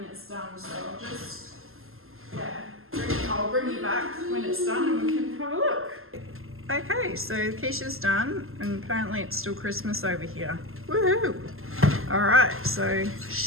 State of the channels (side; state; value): left; late; 0.61 ms